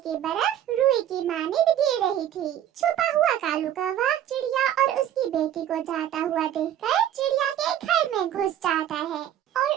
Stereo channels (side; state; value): left; quieter; 11.0 dB